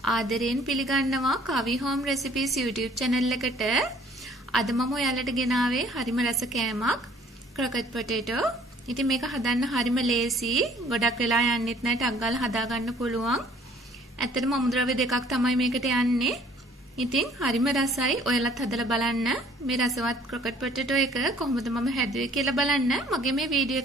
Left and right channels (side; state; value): both; normal; correlation 0.56